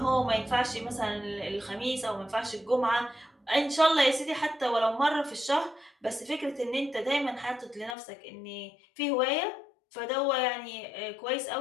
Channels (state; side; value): drops out; right; at 8.0 s